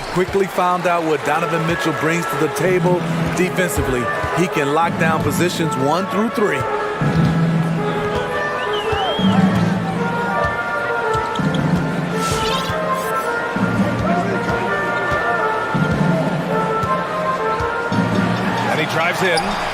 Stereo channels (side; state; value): both; identical; correlation 1.00